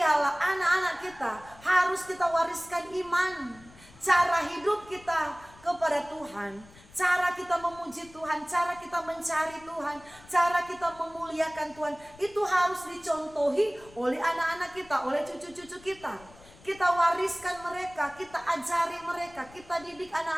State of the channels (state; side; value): noise; left; rumble, 23 dB below the sound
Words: anak-anak kita harus kita wariskan iman, cara hidup kita kepada Tuhan, cara kita memuji Tuhan, cara kita mencari Tuhan, cara kita memuliakan Tuhan, itu harus dicontohi oleh anak-anak kita, oleh cucu-cucu kita. Kita wariskan mereka, kita ajari mereka, kita didik